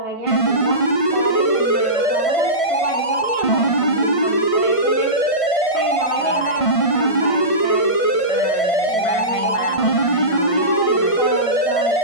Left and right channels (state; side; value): late; right; 1.5 ms